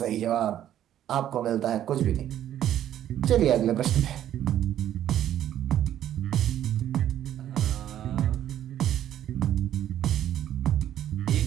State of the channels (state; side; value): quieter; left; 11.4 dB